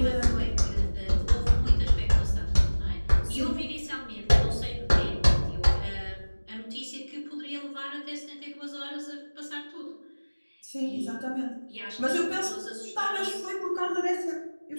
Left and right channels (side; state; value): both; inverted; correlation -1.00